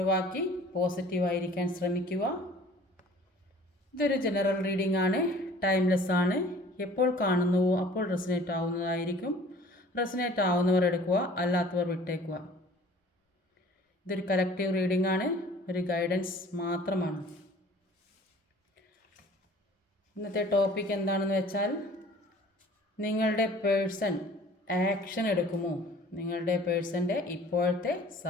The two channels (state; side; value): normal; both; correlation 0.49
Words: പോസിറ്റീവായിരിക്കാൻ ശ്രമിക്കുക. ഇതൊരു ജനറൽ റീഡിംഗ് ആണ്, ടൈംലെസ് ആണ്. എപ്പോൾ കാണുന്നുവോ അപ്പോൾ റെസനേറ്റ് ആവുന്നതായിരിക്കും. റെസനേറ്റ് ആവുന്നവർ എടുക്കുക, അല്ലാത്തവർ വിട്ടേക്കുക. ഇതൊരു കളക്റ്റീവ് റീഡിംഗ് ആണ്, ഒരു ഗൈഡൻസ് മാത്രമാണ്. ഇന്നത്തെ ടോപ്പിക് എന്താണെന്ന് വെച്ചാൽ, നിങ്ങളുടെ പേഴ്സൺ ആക്ഷൻ എടുക്കുമോ? നിങ്ങളുടെ പേഴ്സൻ്റെ ഇപ്പോഴത്തെ